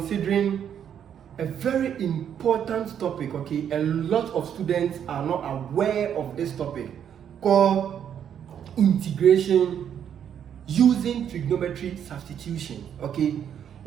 a very important topic, okay? A lot of students are not aware of this topic called integration using trigonometric substitution, okay?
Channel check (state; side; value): quieter; left; 8.9 dB